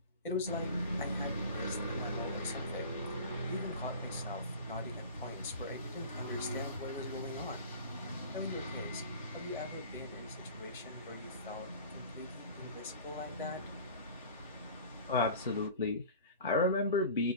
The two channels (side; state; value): both; inverted; correlation -0.39